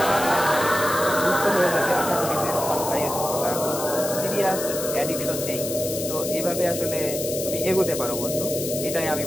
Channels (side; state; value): left; noise; hiss, 6 dB below the sound